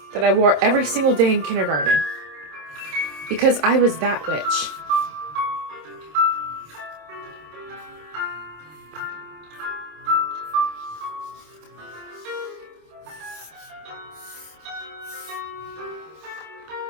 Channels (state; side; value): late; left; 27 ms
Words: That I wore every single day in kindergarten. Because I was that witch.